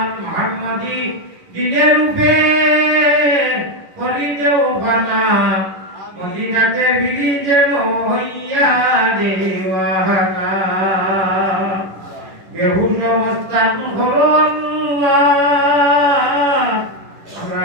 মুহাম্মাদি দিনের রূপে করি দেও বানা মদিনাতে ভিড়ি যেন হইয়া দেওয়ানা বেহুশ অবস্থান হলো আল্লাহ আমরা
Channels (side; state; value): left; late; 11 ms